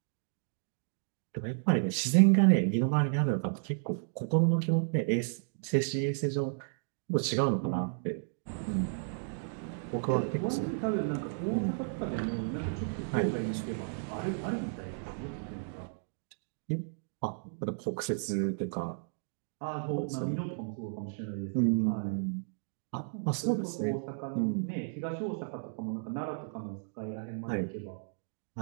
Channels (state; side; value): silent; left; digital silence